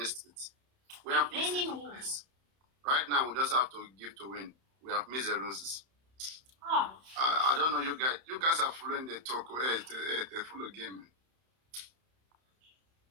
it. We have missed it. Please. Right now, we just have to give to win. We have missed the roses. I don't know you guys. You guys are following the talk. The full game.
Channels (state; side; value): late; left; 31 ms